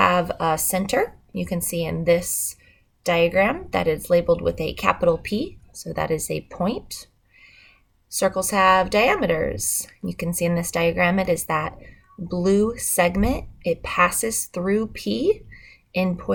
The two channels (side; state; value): both; identical; correlation 1.00